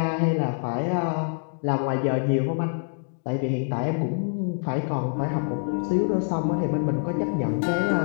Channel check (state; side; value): silent; right; digital silence